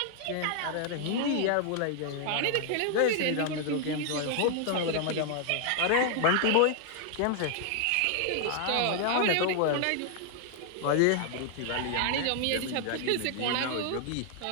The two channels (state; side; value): different; both; correlation 0.00